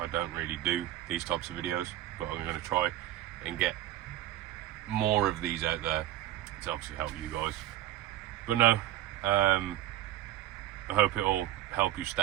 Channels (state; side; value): quieter; left; 13.4 dB